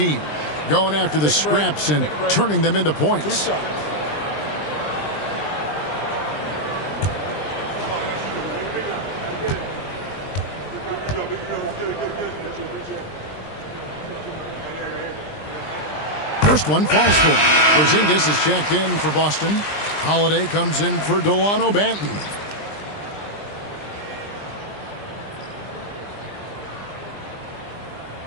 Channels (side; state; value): right; late; 20 ms